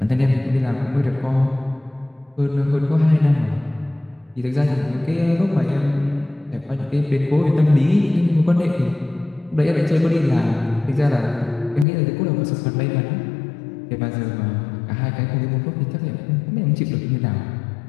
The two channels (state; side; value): drops out; right; at 11.9 s